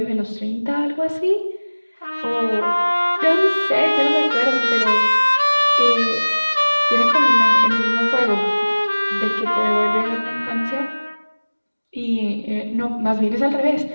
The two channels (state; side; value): inverted; both; correlation -1.00